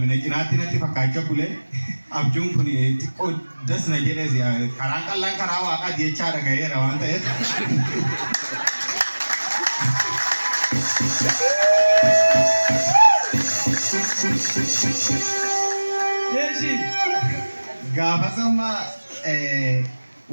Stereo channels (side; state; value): both; inverted; correlation -1.00